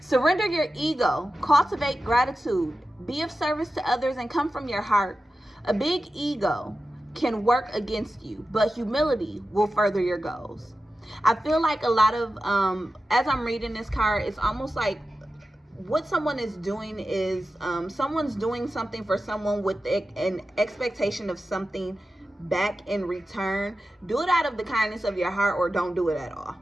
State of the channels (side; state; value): both; normal; correlation 0.92